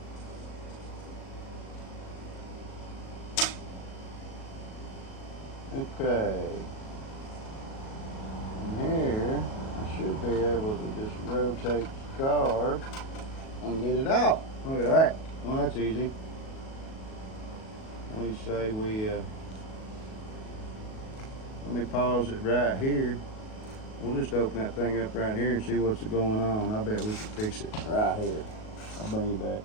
Okay. And here, I should be able to just rotate the carb and get it out. Look at that. Well, that's easy. We say let me pause it right here. We'll just open that thing up right here and see what's going on. I bet we can fix it right here. I'll bring you back.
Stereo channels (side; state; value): right; late; 37 ms